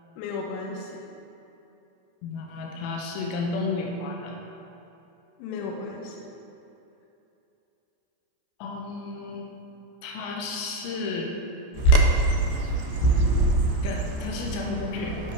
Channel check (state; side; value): late; right; 29 ms